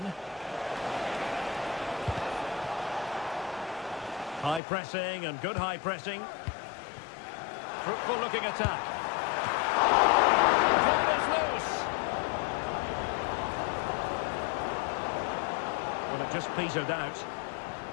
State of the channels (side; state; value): right; drops out; at 4.6 s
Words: High pressing and good high pressing. Fruitful looking attack. Ball is loose. Well, it just petered out.